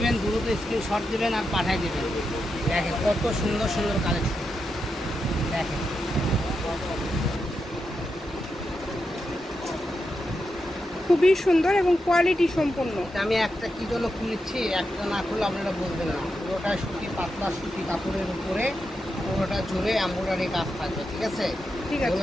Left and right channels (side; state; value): both; normal; correlation 0.86